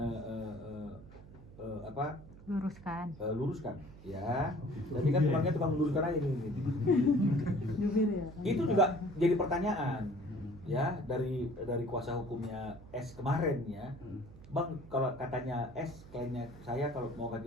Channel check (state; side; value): noise; right; hum, 18 dB below the sound